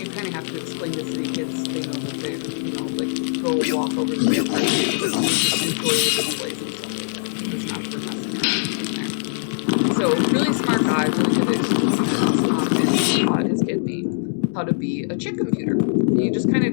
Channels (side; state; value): right; silent; 61 dB below the other